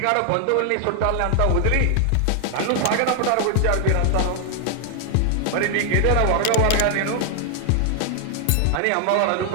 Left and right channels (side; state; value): both; different; correlation 0.00